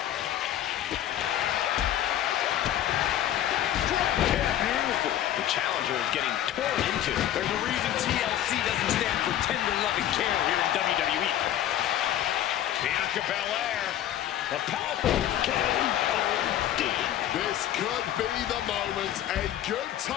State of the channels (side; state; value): right; quieter; 11.8 dB